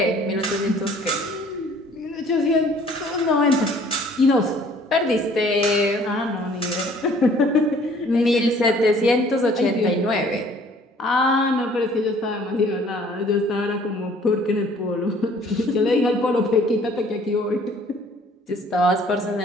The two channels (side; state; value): both; normal; correlation 0.56